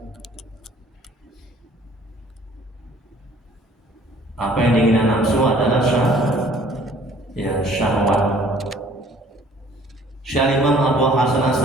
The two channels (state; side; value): normal; both; correlation 0.55